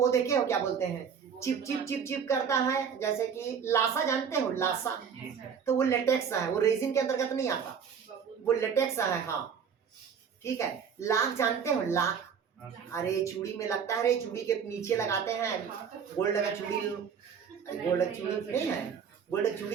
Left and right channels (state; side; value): quieter; left; 7.1 dB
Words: देखे हो क्या बोलते हैं? चिप करता है, जैसे कि लासा जानते हो? लासा, तो वो लेटेक्स है, वो रेजिन के अंतर्गत नहीं आता, वो लेटेक्स है। हाँ ठीक है। लाख जानते हो? लाख, अरे चूड़ी में लगता है, अरे चूड़ी के नीचे लगाते हैं गोल्ड का चूड़ी, गोल्ड चूड़ी नहीं है, गोल्ड चूड़ी